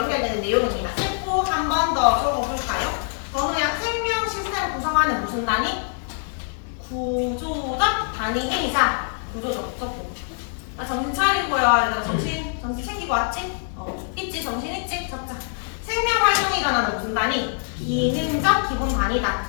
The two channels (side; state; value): right; silent; 63 dB below the other